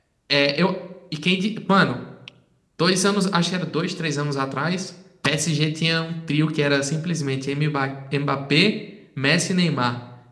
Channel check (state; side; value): identical; both; correlation 1.00